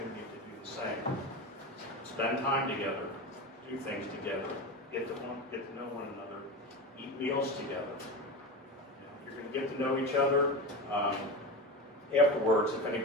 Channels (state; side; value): normal; both; correlation 0.24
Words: to do the same. Spend time together, do things together, get to know one another, eat meals together. You're going to get to know each other. Afterwards, if